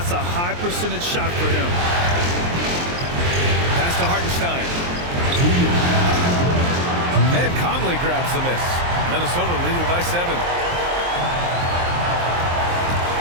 a high percentage shot for him. Pass to Hartenstein. And Conley grabs the miss. Minnesota leading by 7.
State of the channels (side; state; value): left; late; 23 ms